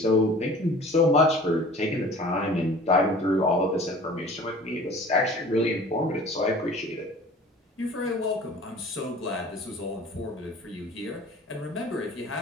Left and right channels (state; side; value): normal; both; correlation 0.45